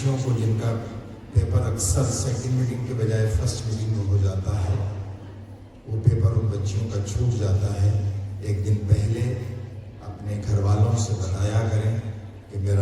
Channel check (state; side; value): identical; both; correlation 1.00